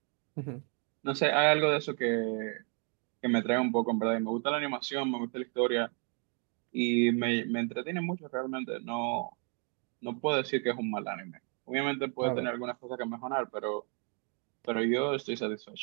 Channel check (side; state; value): left; quieter; 39.2 dB